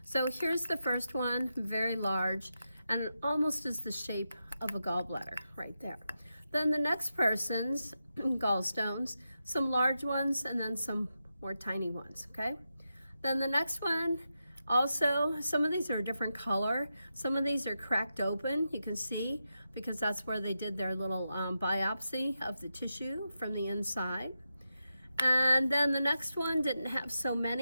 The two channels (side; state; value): both; inverted; correlation -0.88